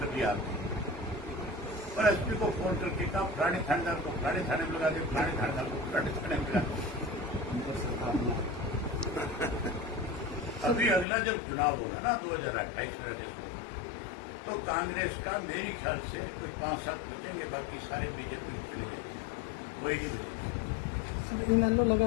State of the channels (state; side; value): drops out; right; at 11.1 s